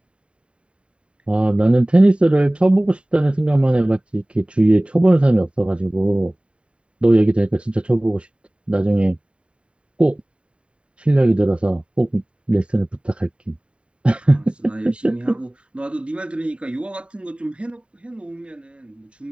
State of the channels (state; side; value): late; left; 0.056 ms